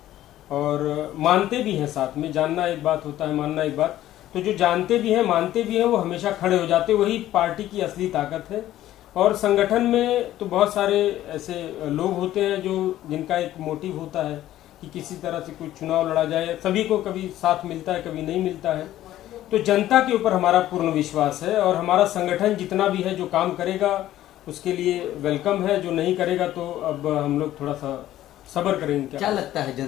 और मानते भी हैं, साथ में जानना एक बात होता है, मानना एक बात, तो जो जानते भी हैं मानते भी हैं वो हमेशा खड़े हो जाते, वही पार्टी की असली ताकत है। और संगठन में तो बहुत सारे ऐसे लोग होते हैं जो जिनका एक मोटिव होता है कि किसी तरह से कोई चुनाव लड़ा जाए, सभी को कभी साथ मिलता है कभी नहीं मिलता है। तो जनता के ऊपर हमारा पूर्ण विश्वास है और हमारा संगठन जितना भी है जो काम करेगा उसके लिए वेलकम है, जो नहीं करेगा तो अब हम लोग थोड़ा सा सब्र करेंगे। क्या लगता है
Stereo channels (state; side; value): quieter; right; 13.6 dB